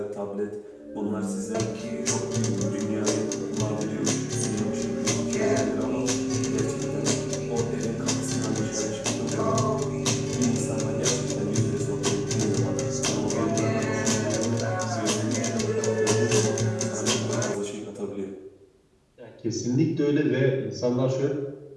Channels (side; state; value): both; identical; correlation 1.00